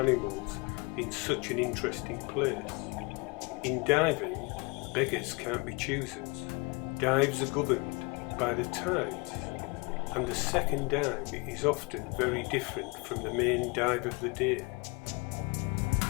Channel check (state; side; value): quieter; right; 29.0 dB